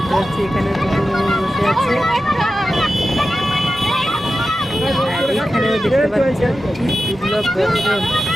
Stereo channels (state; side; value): normal; both; correlation 0.92